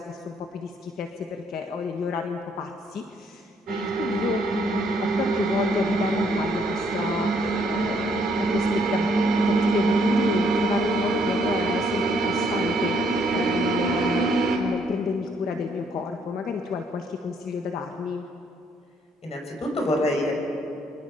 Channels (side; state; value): both; normal; correlation 0.68